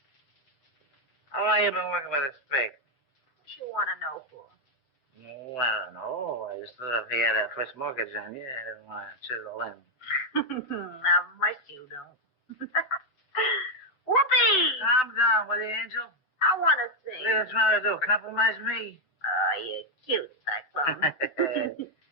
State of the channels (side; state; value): right; late; 7.8 ms